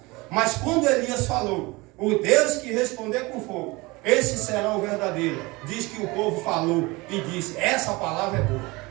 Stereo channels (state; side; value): quieter; left; 23.6 dB